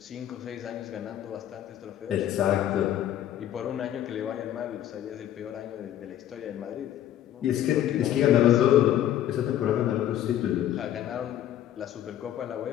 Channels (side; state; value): right; quieter; 11.6 dB